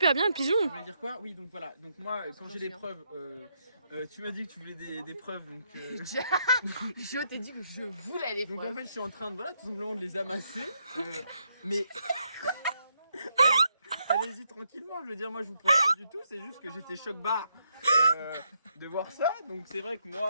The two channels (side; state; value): both; inverted; correlation -0.78